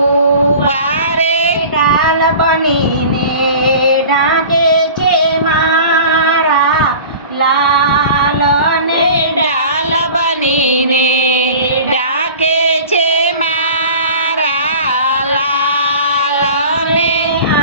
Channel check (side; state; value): both; inverted; correlation -0.40